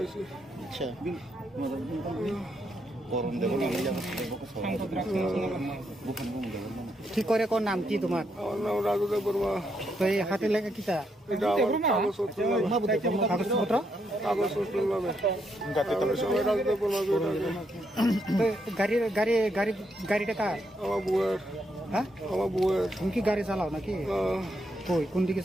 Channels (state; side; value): normal; both; correlation 0.78